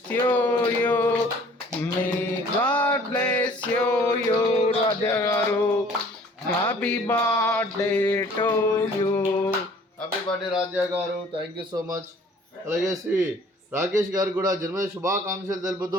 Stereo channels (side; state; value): both; normal; correlation 0.54